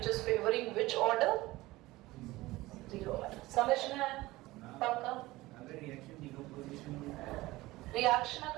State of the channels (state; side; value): quieter; left; 19.0 dB